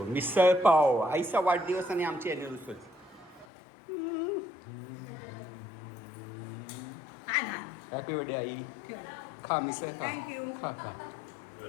मिसळ पाव आईचा वाढदिवस आणि आमची अॅनिव्हर्सरी. हॅपी बर्थडे आई. खा मिसळ खा खा खा.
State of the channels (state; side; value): drops out; right; at 3.5 s